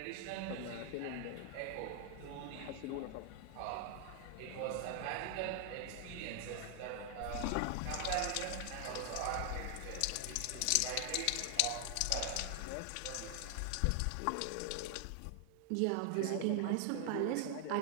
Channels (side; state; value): both; different; correlation 0.00